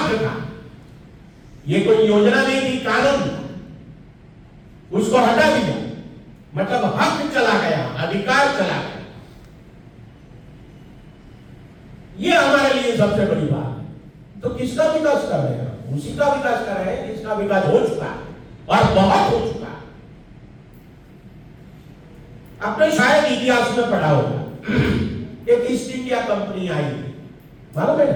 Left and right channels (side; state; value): both; identical; correlation 1.00